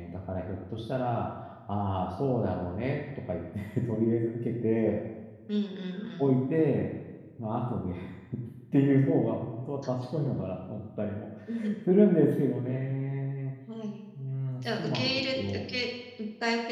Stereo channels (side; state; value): both; identical; correlation 1.00